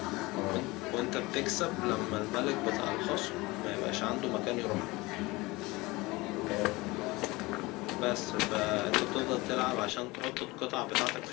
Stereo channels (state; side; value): quieter; right; 22.2 dB